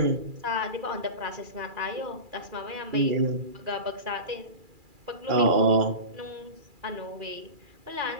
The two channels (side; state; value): left; late; 2.4 ms